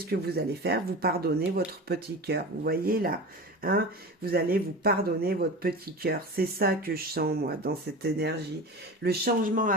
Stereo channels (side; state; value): both; normal; correlation 0.30